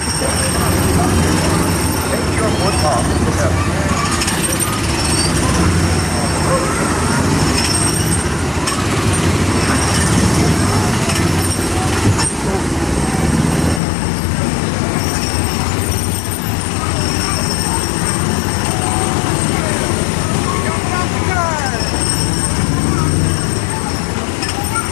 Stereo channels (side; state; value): right; drops out; at 13.8 s